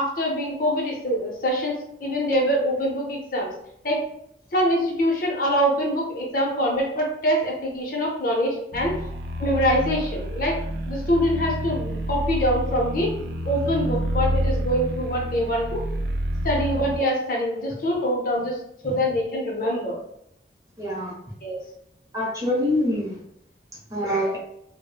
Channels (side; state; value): both; normal; correlation 0.34